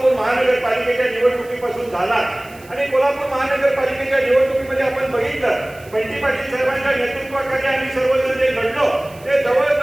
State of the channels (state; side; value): noise; right; hiss, 24 dB below the sound